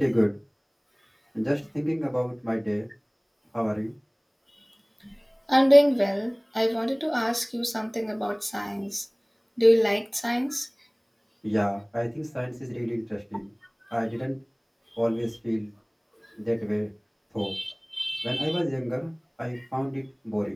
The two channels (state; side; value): identical; both; correlation 1.00